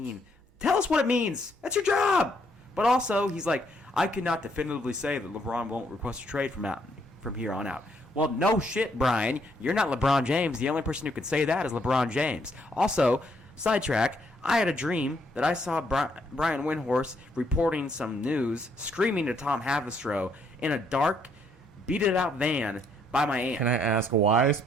Tell us what it means. That's your job. But also, he's like, I cannot definitively say that LeBron won't request a trade from here on out. Well, no shit, Brian. You're not LeBron James. The only person who could say that is LeBron James. Also, sidetrack, I had a dream that I saw Brian Windhorst reporting some news, screaming to Tom Havastro in a dark, beat-it-out van by my aunt. Can I ask why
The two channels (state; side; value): normal; both; correlation 0.71